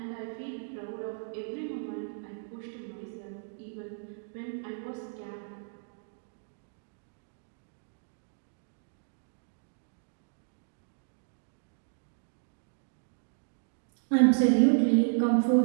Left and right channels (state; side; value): silent; left; digital silence